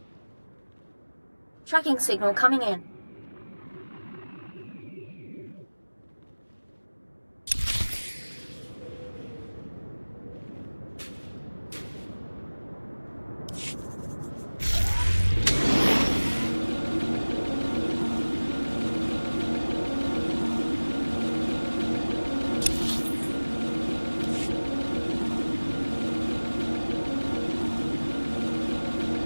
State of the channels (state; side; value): inverted; both; correlation -1.00